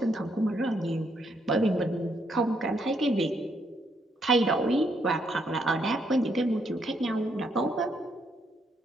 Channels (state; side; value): normal; both; correlation 0.75